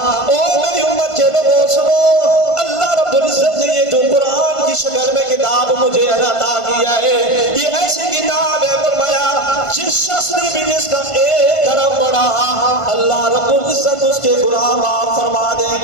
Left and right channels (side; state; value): right; late; 1.5 ms